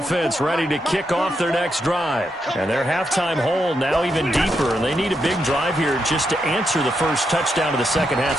ready to kick off their next drive. And their halftime hole now even deeper. And they need a big drive here just to answer the first touchdown of the second half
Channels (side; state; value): both; normal; correlation 0.82